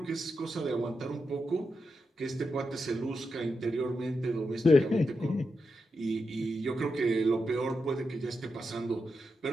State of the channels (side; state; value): both; normal; correlation 0.86